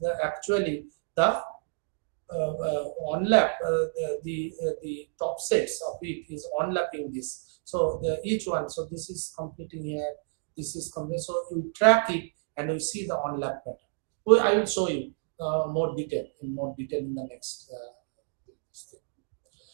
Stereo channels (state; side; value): silent; left; digital silence